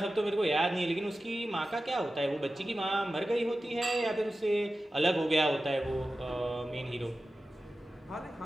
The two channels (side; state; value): both; normal; correlation 0.94